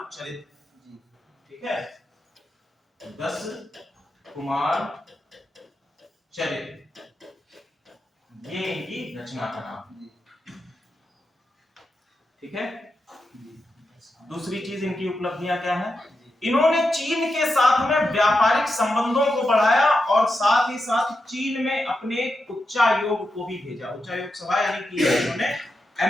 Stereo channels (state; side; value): normal; both; correlation 0.87